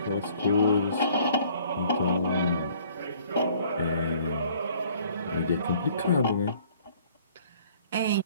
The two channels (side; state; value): both; inverted; correlation -0.57